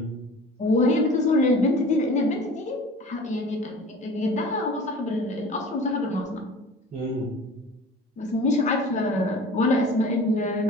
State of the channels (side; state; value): both; normal; correlation 0.41